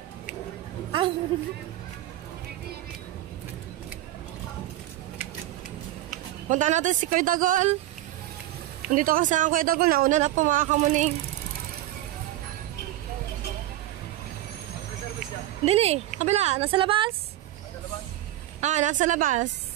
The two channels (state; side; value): quieter; left; 14.8 dB